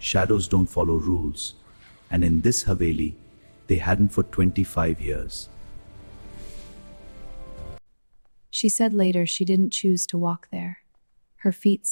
don't follow rules, and in this Haveli, they hadn't for 25 years. She said later she didn't choose to walk there. Her feet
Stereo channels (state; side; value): inverted; both; correlation -1.00